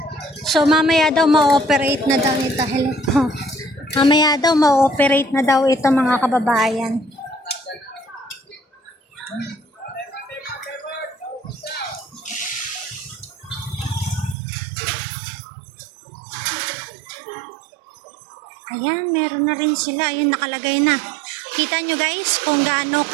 So mamaya daw ma-operate na daw ito. Hello. Mamaya daw ma-operate na daw ito mga kababayan. Ayan, meron na rin sila. Ayun, nakalagay na. Kita nyo guys kung gaano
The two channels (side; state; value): left; drops out; at 14.4 s